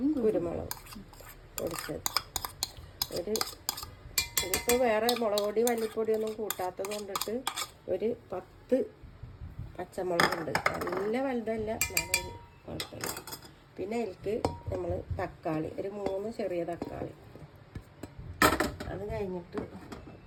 കുരുമുളക് പൊടിച്ചത്. ഇതിപ്പോൾ വേറെ മുളക് പൊടി മല്ലിപ്പൊടിയൊന്നും കൂട്ടാത്തത് കൊണ്ടിട്ട് ഒരു 10 പച്ചമുളകുണ്ട്. നല്ല വലുതല്ല, നല്ലൊരു കുഴപ്പമില്ല. പിന്നെ അതിലേക്ക് നമ്മൾ തക്കാളി, ഒരു 3 ചെറിയ തക്കാളി. അത് കഴിഞ്ഞിട്ട്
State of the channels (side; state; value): both; identical; correlation 1.00